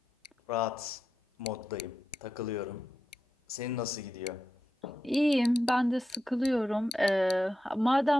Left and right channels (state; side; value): normal; both; correlation 0.88